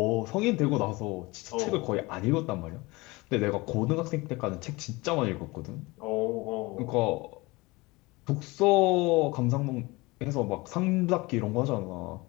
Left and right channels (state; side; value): quieter; right; 23.1 dB